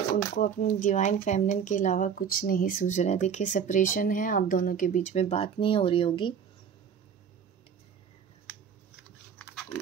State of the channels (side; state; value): left; quieter; 7.4 dB